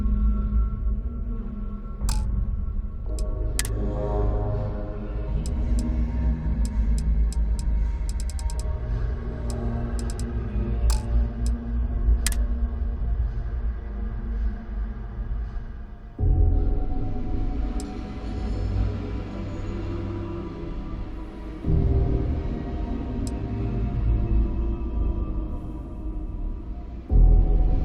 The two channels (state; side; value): identical; both; correlation 1.00